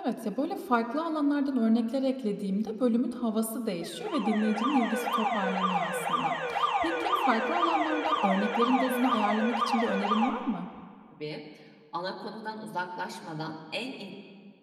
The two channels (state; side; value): identical; both; correlation 1.00